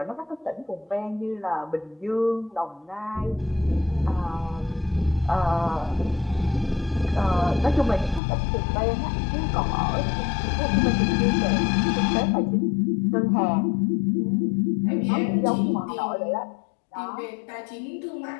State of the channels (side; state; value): right; drops out; at 8.2 s